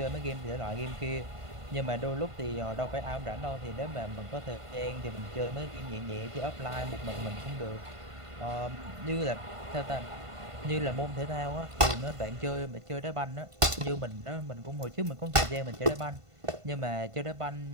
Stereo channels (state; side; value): late; left; 1.5 ms